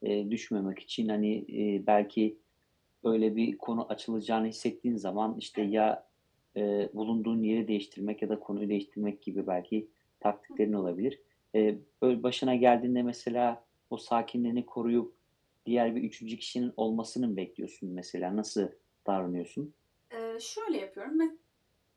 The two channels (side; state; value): both; identical; correlation 1.00